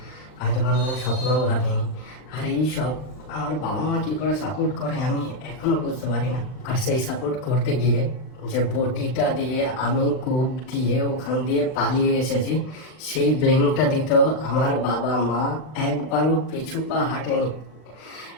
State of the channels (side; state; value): right; late; 39 ms